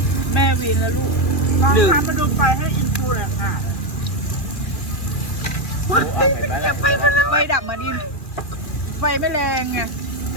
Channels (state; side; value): late; right; 2.4 ms